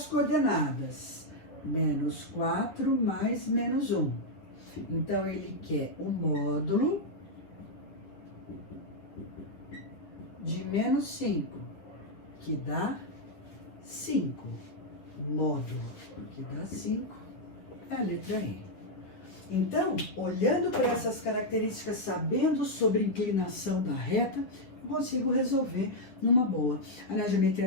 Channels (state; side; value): late; right; 10 ms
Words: coordenadas. Menos 4 mais menos 1. Então, ele quer o módulo de menos 5, que dá 5. Módulo, que dá 5, é a letra E. Então, olhando para essas características, sabendo sobre inclinação da reta, eu consigo resolver numa boa. Na